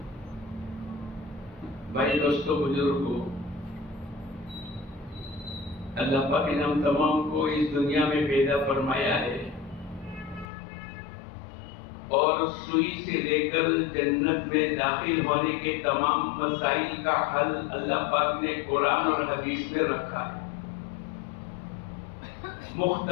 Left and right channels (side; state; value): right; drops out; at 10.5 s